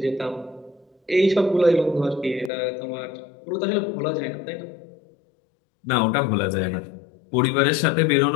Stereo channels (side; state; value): right; drops out; at 2.5 s